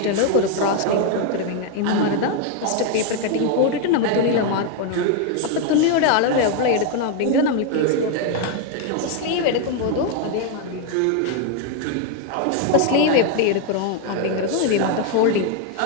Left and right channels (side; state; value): both; different; correlation 0.01